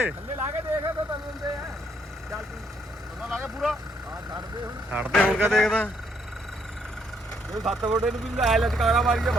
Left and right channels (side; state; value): both; normal; correlation 0.71